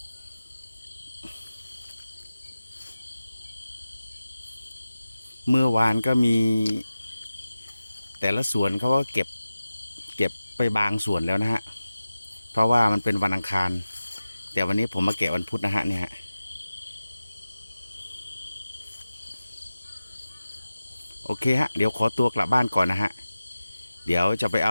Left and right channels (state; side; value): inverted; both; correlation -0.95